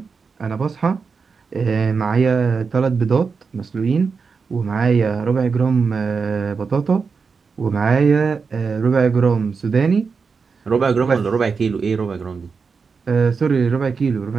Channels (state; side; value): quieter; left; 5.2 dB